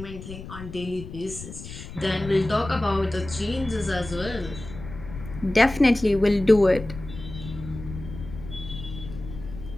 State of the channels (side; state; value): left; noise; rumble, 12 dB below the sound